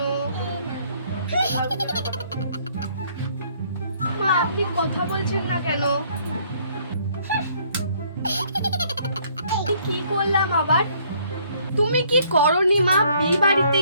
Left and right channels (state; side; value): inverted; both; correlation -0.63